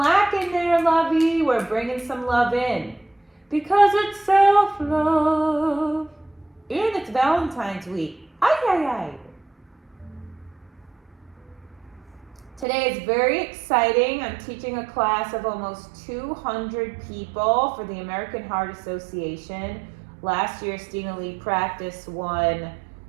in there, lovey. We're bringing some love in. Because it's self-love. And it's Valentine's week. Ay, ay, ay. Today is very exciting. I'm teaching a class of almost 200 people for the American Heart Association. Last year, Stina Lee Practice won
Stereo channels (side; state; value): left; drops out; at 12.7 s